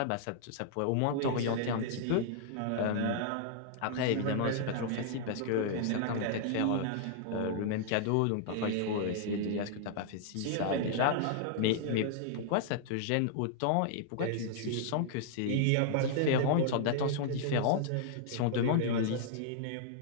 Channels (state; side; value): different; both; correlation -0.01